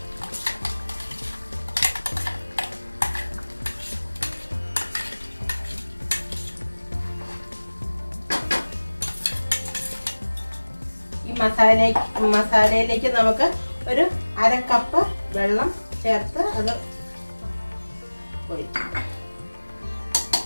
ഈ മസാലയിലേക്ക് നമുക്ക് ഒരു 1/2 കപ്പ് വെള്ളം ചേർത്ത് അത് ഒഴിക്കും.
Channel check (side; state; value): both; inverted; correlation -1.00